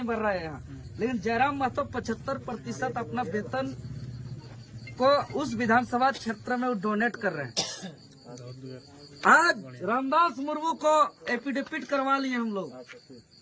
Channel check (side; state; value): both; identical; correlation 1.00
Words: भर रहा है यहाँ, लेकिन जयराम महतो 75% अपना वेतन को उस विधानसभा क्षेत्र में डोनेट कर रहे हैं। आज रामदास मुर्मू को एफिडेविट करवा लिए हम लोग